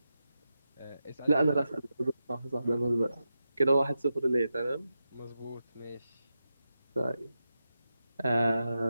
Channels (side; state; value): both; inverted; correlation -0.90